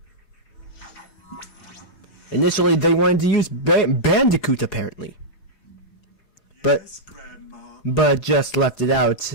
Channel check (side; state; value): right; late; 4.7 ms